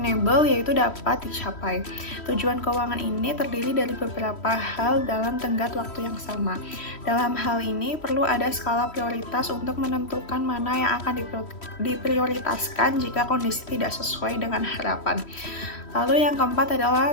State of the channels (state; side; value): late; right; 3.1 ms